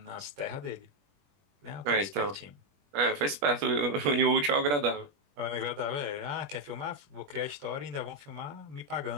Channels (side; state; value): left; late; 21 ms